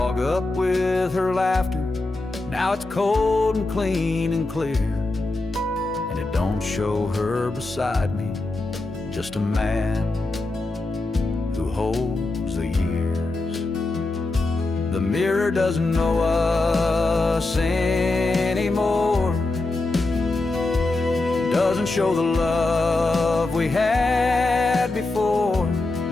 up with her laughter, now it's cold and clean and clear. And it don't show her beside me, just a man who holds the years. The mirror doesn't know us anymore, doesn't show the love we had before.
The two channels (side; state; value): right; quieter; 3.0 dB